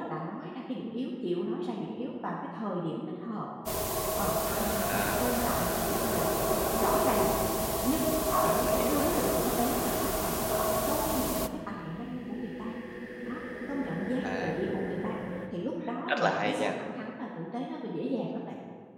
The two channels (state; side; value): identical; both; correlation 1.00